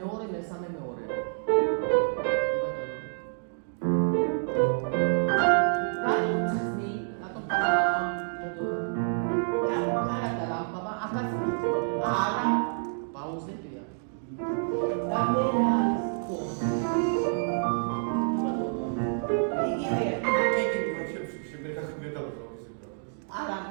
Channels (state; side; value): silent; left; digital silence